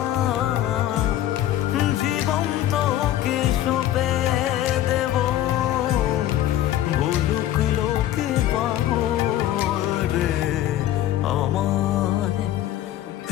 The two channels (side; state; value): right; quieter; 12.9 dB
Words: জীবন তোকে সঁপে দেব ভুলুক লোকে পাবো রে আমায়